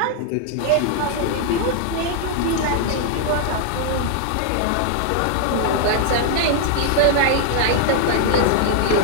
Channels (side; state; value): both; different; correlation 0.00